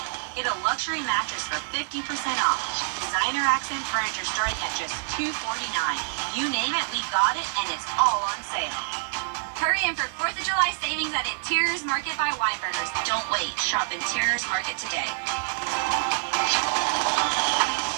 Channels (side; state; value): left; silent; digital silence